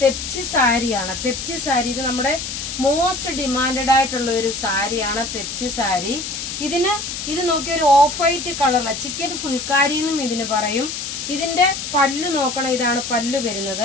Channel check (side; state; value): left; noise; hiss, 6 dB below the sound